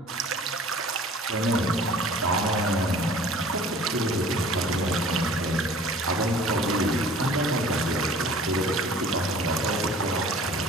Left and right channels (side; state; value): both; normal; correlation 0.48